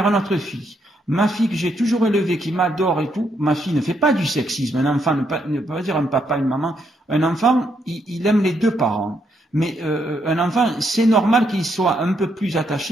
notre fille. Ma fille que j'ai toujours élevée, qui m'adore et tout, ma fille ne fait pas du sexisme. Un enfant ne peut pas dire un papa, une maman. Un enfant, il aime les deux parents. Mais un enfant, c'est normal qu'il soit un peu plus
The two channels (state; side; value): normal; both; correlation 0.76